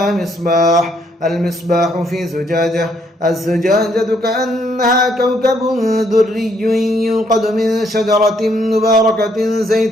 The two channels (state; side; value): normal; both; correlation 0.70